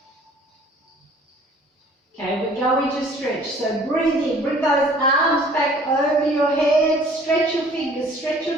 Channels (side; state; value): both; normal; correlation 0.53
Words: Okay, we're going to stretch. So breathe in, bring those arms back over your head, stretch your fingers, stretch